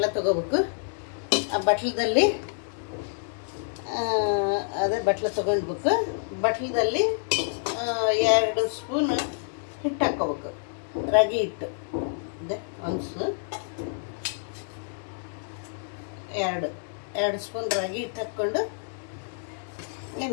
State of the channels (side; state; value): right; silent; digital silence